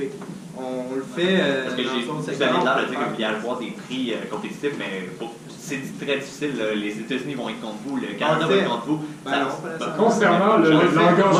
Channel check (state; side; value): identical; both; correlation 1.00